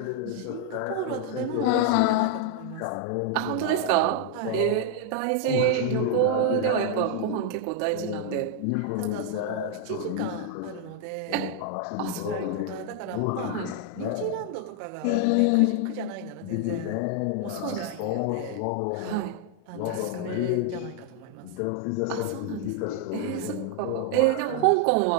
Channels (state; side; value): different; both; correlation 0.00